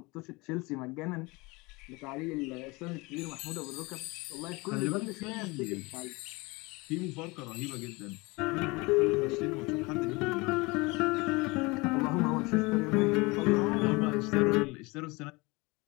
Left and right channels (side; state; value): right; quieter; 24.9 dB